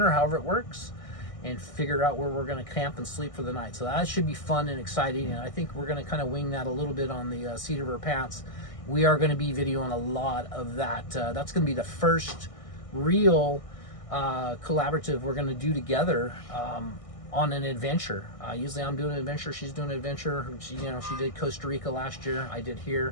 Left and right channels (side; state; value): right; late; 1.6 ms